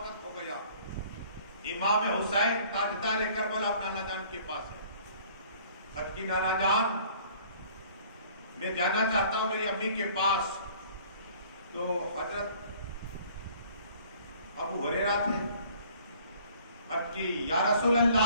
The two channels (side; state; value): both; inverted; correlation -0.55